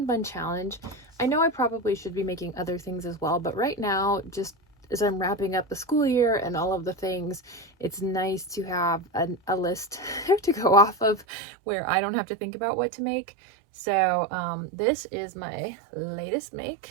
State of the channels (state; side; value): drops out; left; at 11.2 s